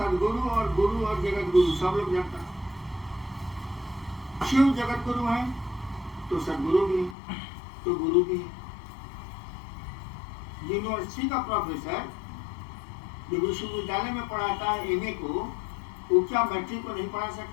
और गुरु और जगत गुरु सब लोग जानता है। शिव जगत गुरु है तो सदगुरु भी है, तो गुरु भी है। यूनिवर्सिटी का प्रोफेसर जो विश्वविद्यालय में पढ़ाता है एमए को, वो क्या मैट्रिक को नहीं पढ़ा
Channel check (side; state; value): right; drops out; at 7.2 s